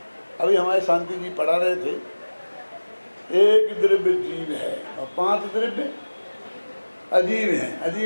अभी हमारे शांति जी पढ़ा रहे थे, एक द्रव्य जीव है और 5 द्रव्य अजीब है।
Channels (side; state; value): both; inverted; correlation -1.00